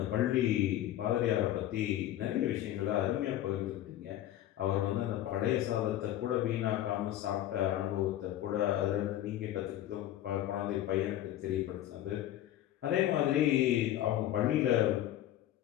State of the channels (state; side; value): quieter; right; 13.0 dB